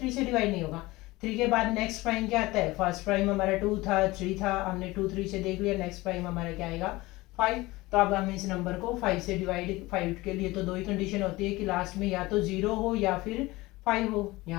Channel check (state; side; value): quieter; right; 20.4 dB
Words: से डिवाइड नहीं होगा। 3 के बाद नेक्स्ट प्राइम क्या आता है, फर्स्ट प्राइम हमारा 2 था, 3 था, हमने 2 3 से देख लिया। नेक्स्ट प्राइम हमारा क्या आएगा 5। तो अब हम इस नंबर को 5 से डिवाइड, 5 के लिए तो 2 ही कंडीशन होती है कि लास्ट में या तो 0 हो या फिर 5 हो।